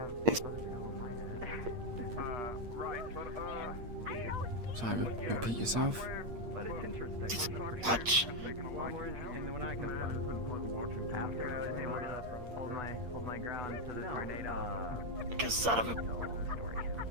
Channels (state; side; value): late; left; 8.6 ms